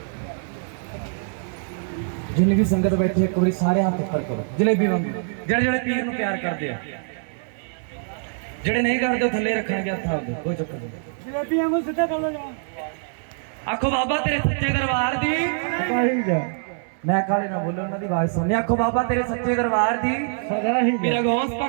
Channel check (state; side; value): silent; left; digital silence